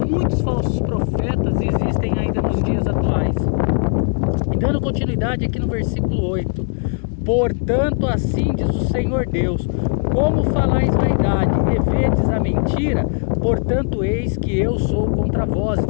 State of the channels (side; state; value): right; silent; 56 dB below the other